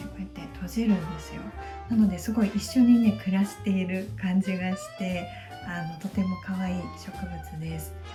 こうやって閉じるんですよ。なのですごい一緒にね暮らしている感じがして、とても可愛い植物です。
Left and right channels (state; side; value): identical; both; correlation 1.00